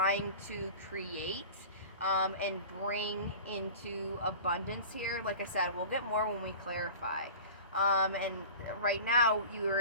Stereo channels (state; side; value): inverted; both; correlation -0.38